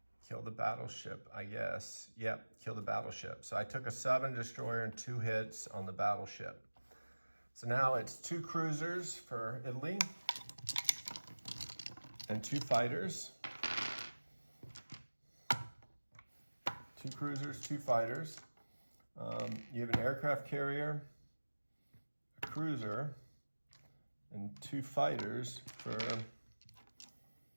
kill the battleship, I guess. Yep, kill the battleship. So I took a sub and destroyer and 2 hits on the battleship. So now it's 2 cruisers for Italy and 2 fighters. 2 cruisers, 2 fighters. You have an aircraft carrier, a cruiser, and 2 fighters for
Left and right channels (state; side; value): inverted; both; correlation -1.00